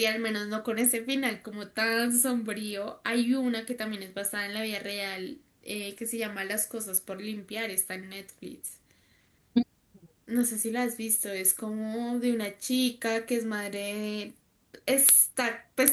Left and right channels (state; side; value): identical; both; correlation 1.00